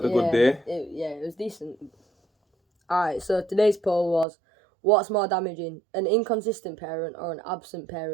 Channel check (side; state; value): left; drops out; at 4.2 s